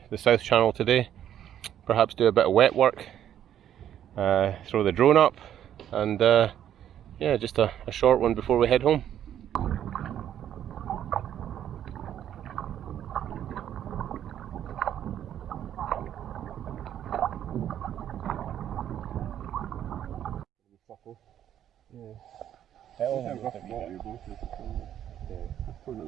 the South Channel today. Perhaps do a bit of wet work, throw the drone up, and yeah, just a short one before we head home. Probably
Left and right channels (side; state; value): left; quieter; 10.5 dB